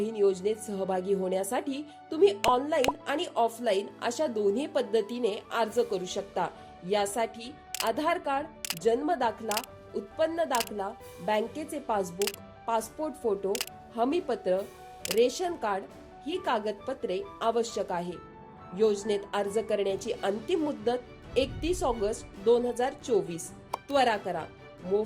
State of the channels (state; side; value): identical; both; correlation 1.00